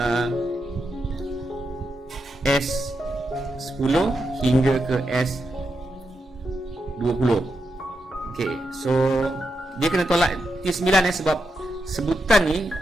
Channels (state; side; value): normal; both; correlation 0.85